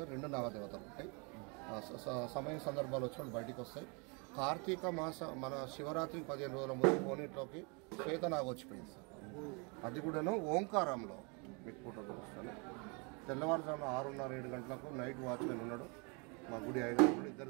2 నాగదేవతలు ఉంటాయి. సమయ సందర్భాలు వచ్చినప్పుడు బయటికి వస్తాయి. కార్తీక మాస మన శివరాత్రికి 15 రోజుల ముందు కోనేట్లోకి శ్వేతనాగ వచ్చిపోయింది సార్. అది కూడాను ఓంకారంలో మీకు ఫోటో చూపిస్తాను. తెల్లవారుజామున 6:30-7 గంటలకు నైట్ వాచ్మెన్ ఉన్నాడు, మా గుడి ఆయన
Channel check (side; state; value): left; quieter; 32.9 dB